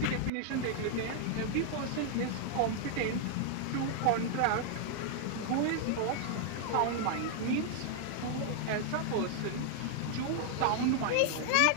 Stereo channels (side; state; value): both; different; correlation 0.00